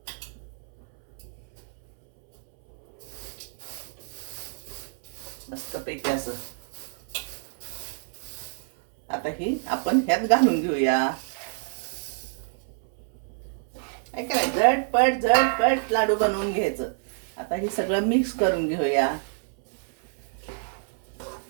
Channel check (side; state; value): left; silent; 60 dB below the other